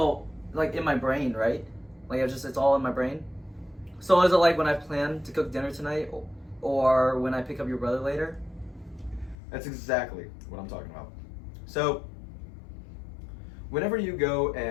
like in my brain, right? Like it's all in my brain. So is it like when I plan to cook dinner tonight, or when I pick up your brother later? That's exactly what I'm talking about. So, whenever you go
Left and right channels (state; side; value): drops out; right; at 9.3 s